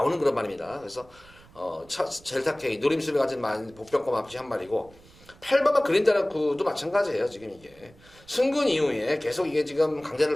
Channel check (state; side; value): noise; right; rumble, 25 dB below the sound